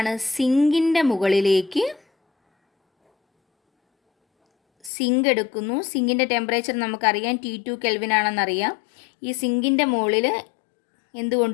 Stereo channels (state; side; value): drops out; right; at 4.9 s